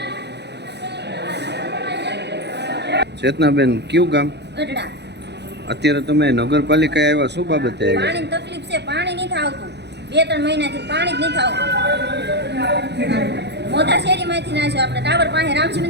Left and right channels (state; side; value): late; left; 0.50 ms